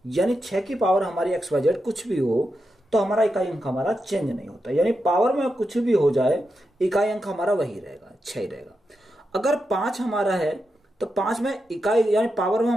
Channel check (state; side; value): normal; both; correlation 0.87